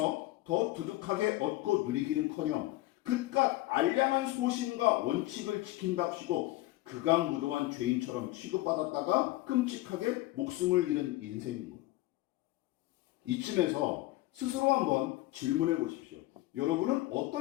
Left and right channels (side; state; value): right; quieter; 18.0 dB